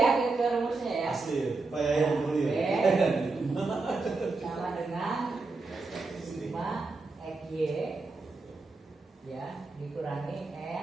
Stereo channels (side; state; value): left; quieter; 3.7 dB